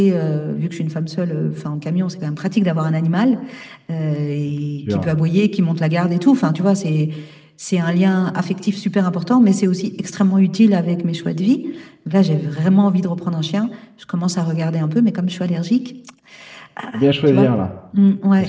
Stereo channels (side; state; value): both; identical; correlation 1.00